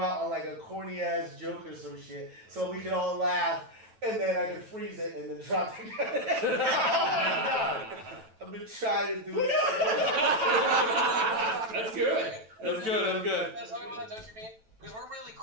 on like a corny ass joke or some shit, so we can all laugh, and then I can freeze it and then drop the credit. Oh my god! I've been trying to do it. That's good. That's good. That's how we want to, don't you mean? Because we're really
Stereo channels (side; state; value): left; late; 9.1 ms